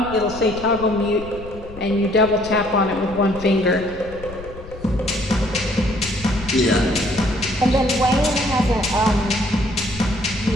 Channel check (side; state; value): left; noise; rumble, 15 dB below the sound